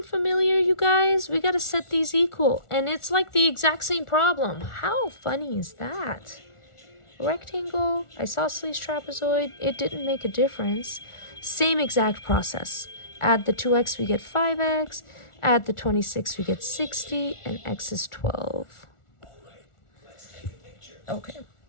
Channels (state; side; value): late; right; 1.4 ms